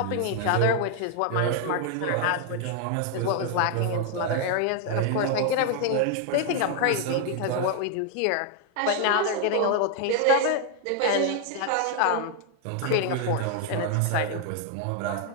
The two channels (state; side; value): different; both; correlation 0.01